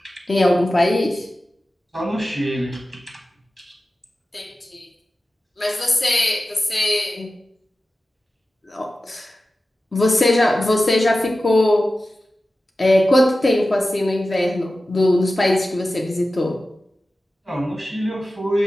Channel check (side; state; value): both; normal; correlation 0.94